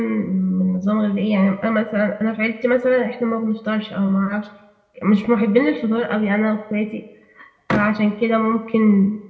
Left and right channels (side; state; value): both; identical; correlation 1.00